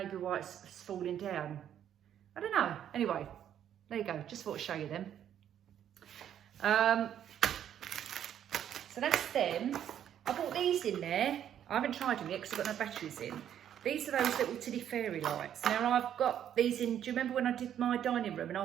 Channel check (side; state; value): left; quieter; 10.0 dB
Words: why it's falling down. I don't know. Anyway, there you go. Just thought I'd show you them. So that's them. I bought these in there. I haven't tried them yet because I've got no batteries in. These are those little tiddy fairy lights. Now I've got these in, do you remember when I did my dining room and